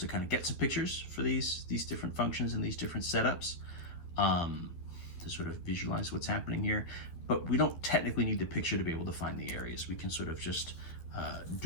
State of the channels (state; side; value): late; right; 11 ms